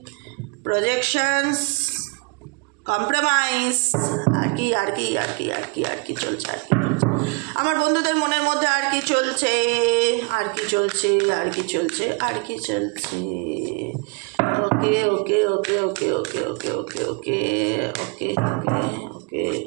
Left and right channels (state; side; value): quieter; left; 31.4 dB